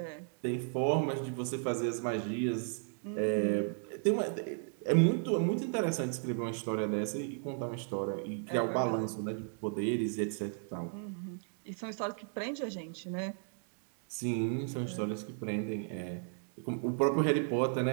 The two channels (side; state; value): left; silent; 55 dB below the other